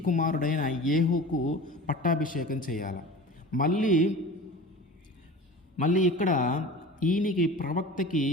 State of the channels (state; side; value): normal; both; correlation 0.36